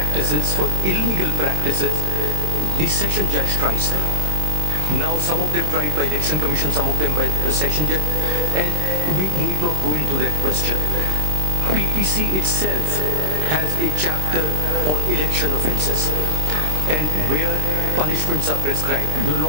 for illegal practices, the session judge tries them. Now some of them tried by Election Commission, some of them by the session judge, and we need not go into that question. PPC itself has a chapter on election offences and where punishments are prescribed. Your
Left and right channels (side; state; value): left; late; 26 ms